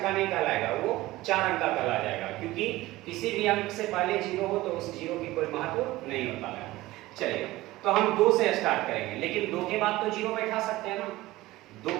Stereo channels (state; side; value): quieter; left; 18.0 dB